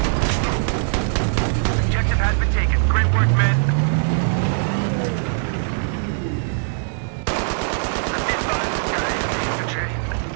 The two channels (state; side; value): silent; left; 62 dB below the other